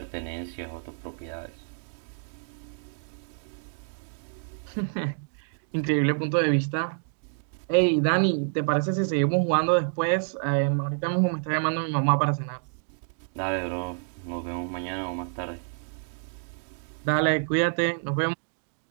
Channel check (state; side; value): silent; left; digital silence